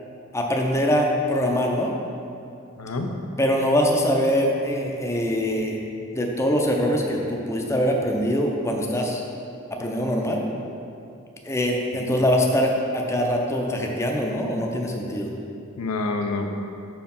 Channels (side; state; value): both; normal; correlation 0.48